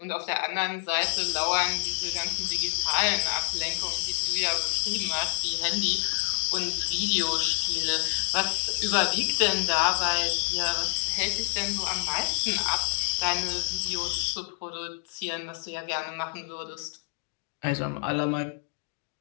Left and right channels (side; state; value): right; silent; 59 dB below the other